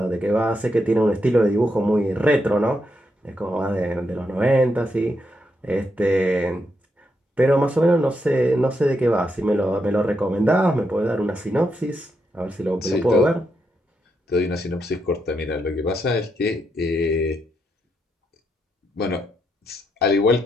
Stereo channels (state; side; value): normal; both; correlation 0.81